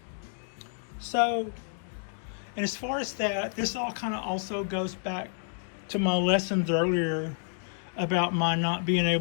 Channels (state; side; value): silent; right; 58 dB below the other